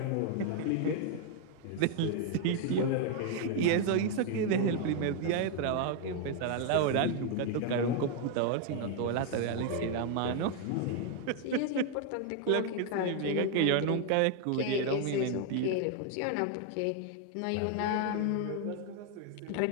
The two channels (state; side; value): different; both; correlation 0.00